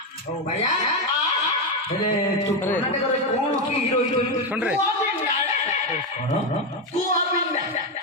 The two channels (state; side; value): normal; both; correlation 0.09